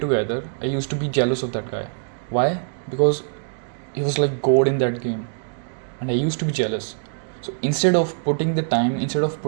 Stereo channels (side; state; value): left; silent; digital silence